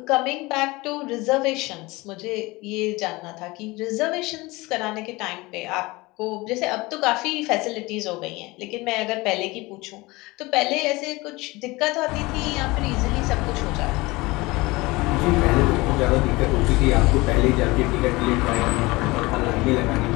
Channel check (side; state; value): right; quieter; 22.3 dB